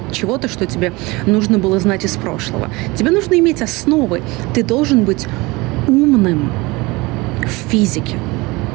чего-то, что тебе нужно было знать из прошлого. Тебе нужно иметь основы. Ты должен быть умным в физике.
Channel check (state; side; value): quieter; left; 23.4 dB